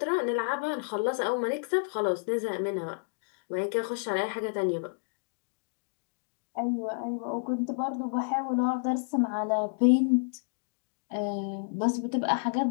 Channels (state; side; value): silent; right; digital silence